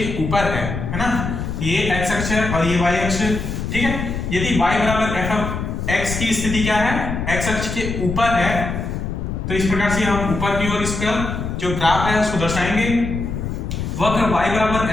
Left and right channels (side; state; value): left; noise; rumble, 4 dB below the sound